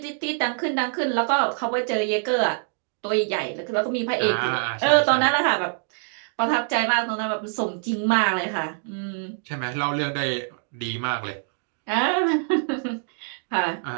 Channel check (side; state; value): left; silent; 62 dB below the other